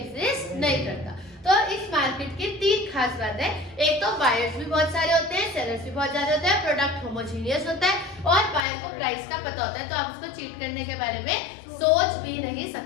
नहीं करता। तो इस मार्केट की 3 खास बात है। एक तो बायर्स भी बहुत सारे होते हैं, सेलर्स भी बहुत ज्यादा होते हैं, प्रोडक्ट होमोजीनियस होता है और बायर को प्राइस का पता होता है, तो आप उसको चीट करने के बारे में सोच भी नहीं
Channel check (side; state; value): right; drops out; at 8.7 s